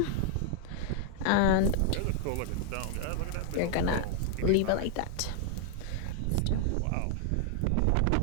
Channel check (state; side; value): different; both; correlation 0.00